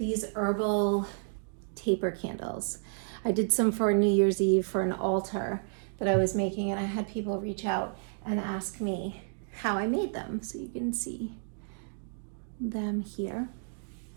herbal taper candles. I did some for New Year's Eve for an altar that I was making, and I had people reach out and ask me how I made them. So you can see them here.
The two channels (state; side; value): silent; left; digital silence